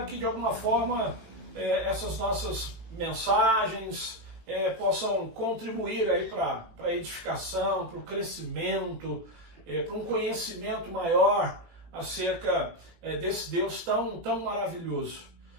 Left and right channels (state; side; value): late; left; 18 ms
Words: que de alguma forma essas nossas mensagens possam contribuir aí para a edificação, para o crescimento, para um conhecimento maior acerca desse Deus tão maravilhoso.